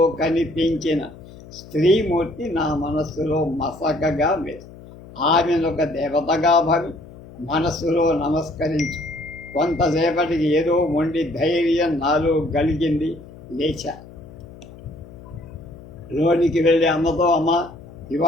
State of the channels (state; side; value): noise; left; hum, 18 dB below the sound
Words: కనిపించిన స్త్రీమూర్తి నా మనస్సులో మసకగా వేసి ఆమెను ఒక దేవతగా భావి మనస్సులో నమస్కరించి కొంతసేపటికి ఏదో మొండి ధైర్యం నాలో కలిగింది. లేచా. లోనికి వెళ్ళి అమ్మతో, అమ్మ,